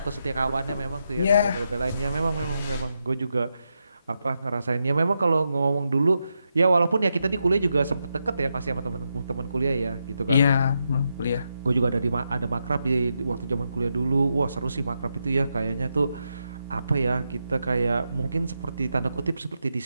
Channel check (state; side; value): inverted; both; correlation -0.84